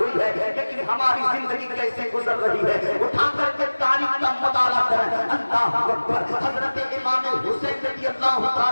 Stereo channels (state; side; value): inverted; both; correlation -1.00